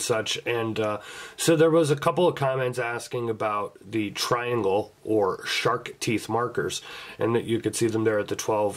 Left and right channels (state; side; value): identical; both; correlation 1.00